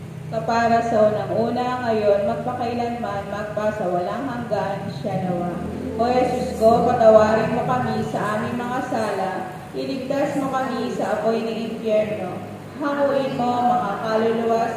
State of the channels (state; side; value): identical; both; correlation 1.00